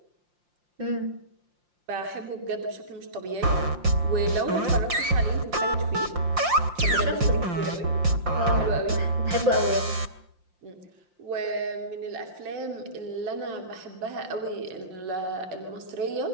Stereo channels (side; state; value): left; late; 5.7 ms